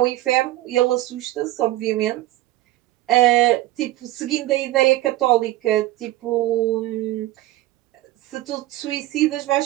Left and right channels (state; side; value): quieter; left; 16.1 dB